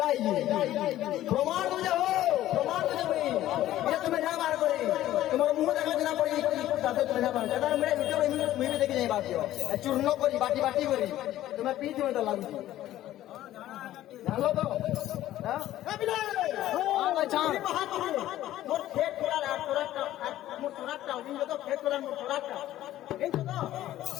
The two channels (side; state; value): right; quieter; 13.9 dB